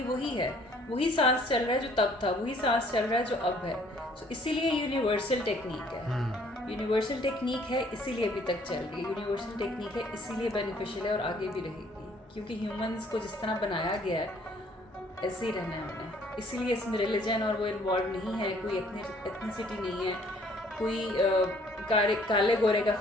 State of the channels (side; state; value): both; normal; correlation 0.60